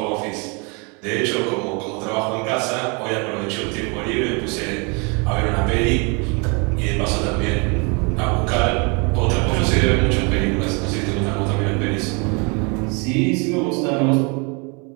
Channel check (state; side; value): quieter; left; 32.2 dB